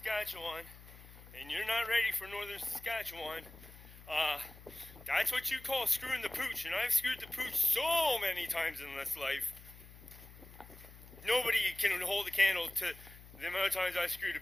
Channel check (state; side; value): noise; left; hum, 19 dB below the sound